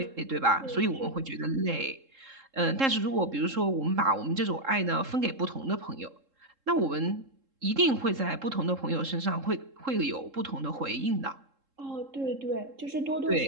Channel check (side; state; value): left; late; 3.7 ms